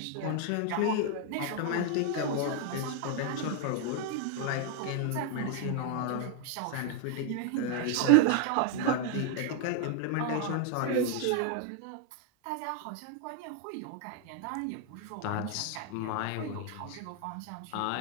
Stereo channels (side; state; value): both; different; correlation 0.00